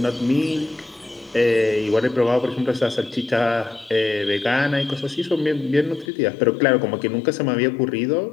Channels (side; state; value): right; drops out; at 6.1 s